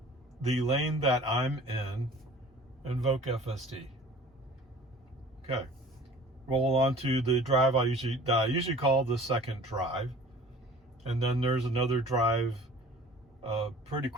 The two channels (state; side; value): normal; both; correlation 0.47